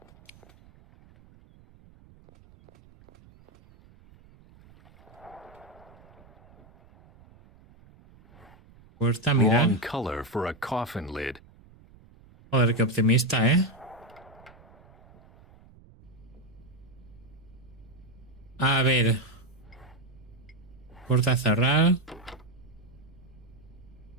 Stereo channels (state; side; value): noise; right; rumble, 25 dB below the sound